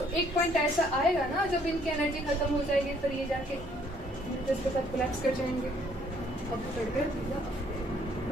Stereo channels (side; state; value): both; normal; correlation 0.63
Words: एक पॉइंट ऐसा आएगा ना जब इनकी एनर्जी खत्म हो जाएगी, फिर ये जाके इसके साथ कोलैप्स कर जाएंगे। अब मतलब